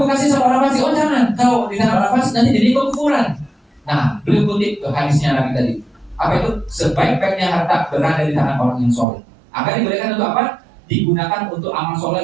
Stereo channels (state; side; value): drops out; left; at 9.1 s